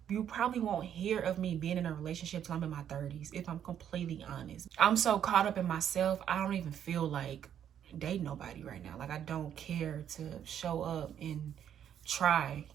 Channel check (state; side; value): quieter; left; 9.5 dB